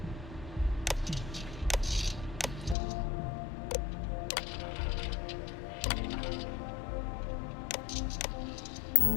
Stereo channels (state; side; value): drops out; right; at 2.8 s